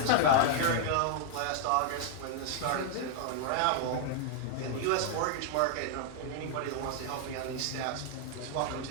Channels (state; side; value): different; both; correlation 0.00